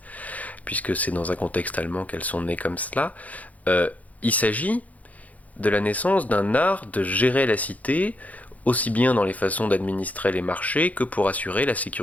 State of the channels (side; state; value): right; late; 0.073 ms